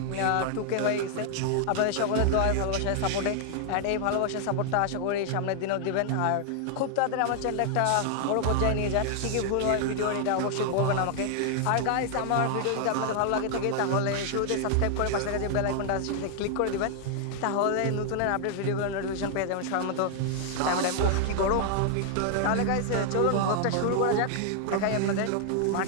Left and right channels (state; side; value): different; both; correlation 0.00